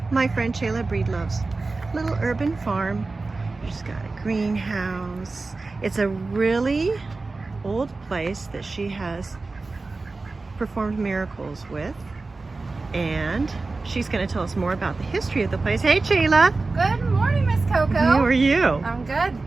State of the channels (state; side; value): quieter; left; 3.6 dB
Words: my friend Cheyla Breedlove's little urban farm. She's got a greenhouse. It's a really old place that she has performed miracles with, and she's going to tell us more about the history of the place. Hey Cheyla! Good morning, Miss Coco. How are you? I'm good.